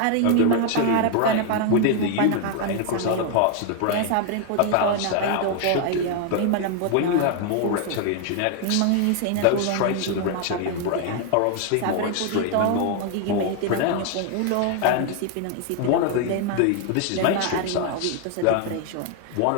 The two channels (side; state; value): both; different; correlation 0.01